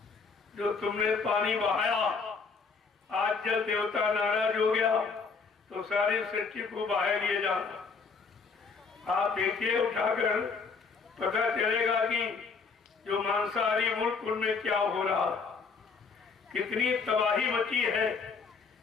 जो तुमने पानी बहाया, आज जल देवता नाराज हो गया तो सारी सृष्टि को बहा लिए जाना। आप देखिए उठाकर, पता चलेगा कि जो मांसाहारी मुल्क उनमें क्या हो रहा, कितनी तबाही मची है।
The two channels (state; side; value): quieter; right; 5.0 dB